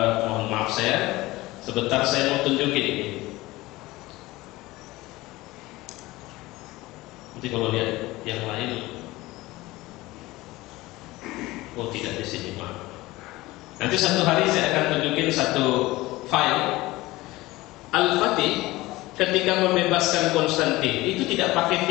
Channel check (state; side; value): quieter; right; 19.3 dB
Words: Mohon maaf saya, sebentar saya mau tunjukin ini. Nanti kalau lihat yang lain, oh tidak di sini, maaf. Nanti satu hari saya akan tunjukin satu file Al-Fatih ketika membebaskan Konstantin itu tidak pakai